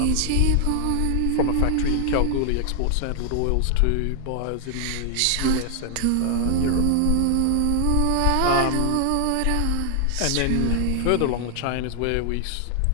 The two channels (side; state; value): both; different; correlation 0.00